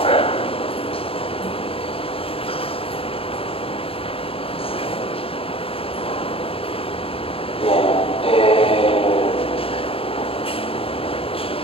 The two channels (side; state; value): right; late; 0.27 ms